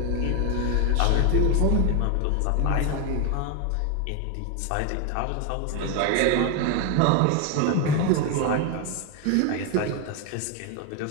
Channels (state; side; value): different; both; correlation 0.01